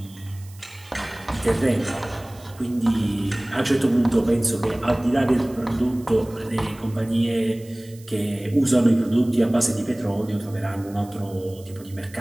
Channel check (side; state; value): right; noise; hiss, 24 dB below the sound